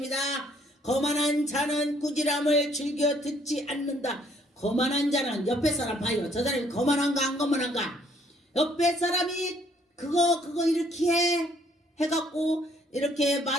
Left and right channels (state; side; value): normal; both; correlation 0.64